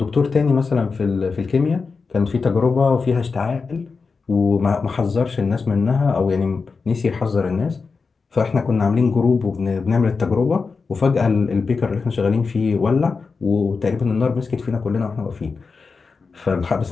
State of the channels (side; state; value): right; quieter; 4.7 dB